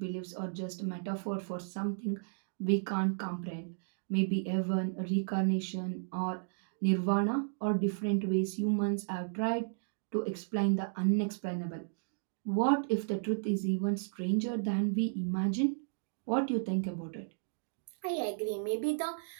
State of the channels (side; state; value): left; silent; digital silence